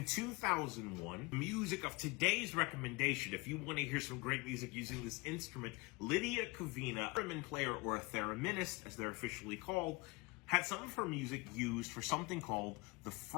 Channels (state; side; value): quieter; right; 25.4 dB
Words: 2001, music of today's recommendation, if you want to hear some great music using this instrument, Lydia Kavina, a theremin player or a thereminist, as they're officially called, had some of her music used for something called the